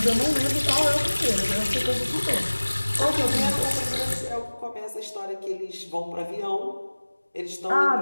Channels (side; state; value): both; inverted; correlation -1.00